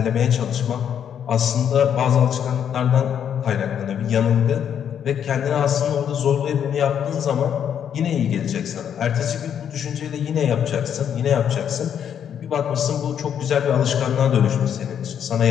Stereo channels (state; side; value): quieter; right; 8.7 dB